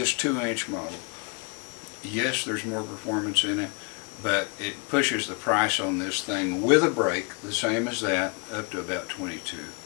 2-inch model, yes, there's more performance in it, but it pushes the price on this thing with a brake, the same as that, up to about $22.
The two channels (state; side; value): quieter; right; 33.1 dB